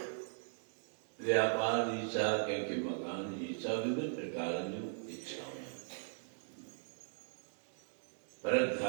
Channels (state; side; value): silent; left; digital silence